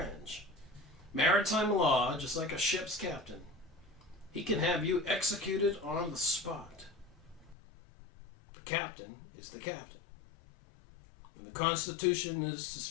Maritime law, just like a ship's captain. He can have you executed on the spot. The captain is the captain. When the Constitution is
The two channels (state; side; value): drops out; right; at 7.6 s